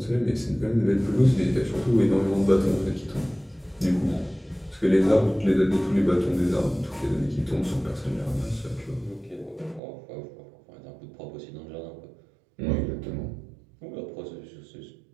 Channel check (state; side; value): drops out; left; at 9.8 s